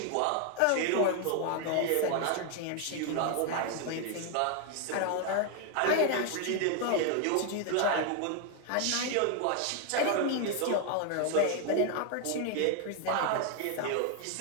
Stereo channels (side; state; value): both; different; correlation 0.01